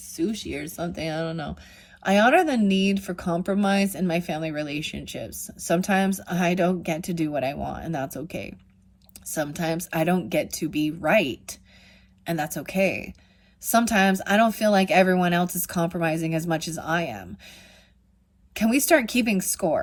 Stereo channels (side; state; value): both; identical; correlation 1.00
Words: or something, I don't know. I honor the need for compromise in my family relationships. Sometimes I don't get to do what I want, and that's okay. Sometimes I don't get to be right, and that's okay. Sometimes I don't feel like everyone else is compromising as much as I am. Can we start keeping